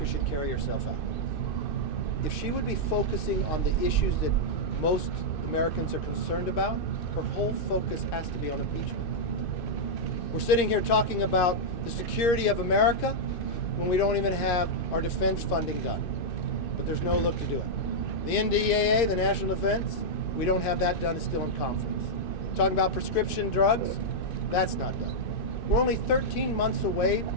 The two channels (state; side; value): late; right; 2.6 ms